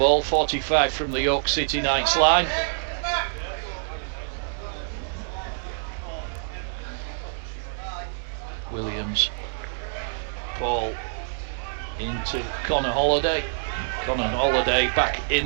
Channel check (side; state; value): left; silent; digital silence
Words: 45 from the York City Knights line. Williams, ball into Connor Holliday. Connor Holliday back